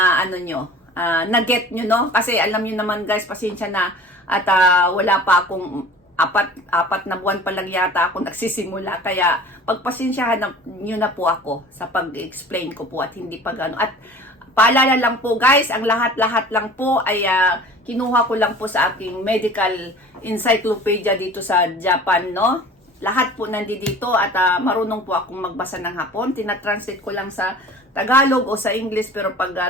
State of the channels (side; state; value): both; normal; correlation 0.44